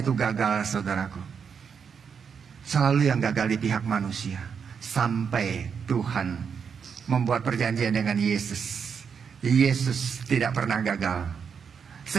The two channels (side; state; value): left; quieter; 6.6 dB